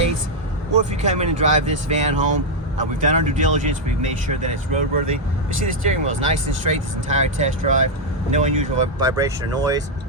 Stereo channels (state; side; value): normal; both; correlation 0.00